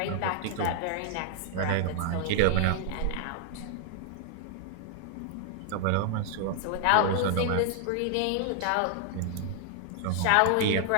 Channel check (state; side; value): different; both; correlation -0.01